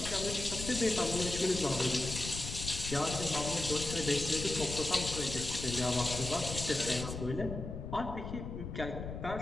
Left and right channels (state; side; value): noise; left; rumble, 7 dB below the sound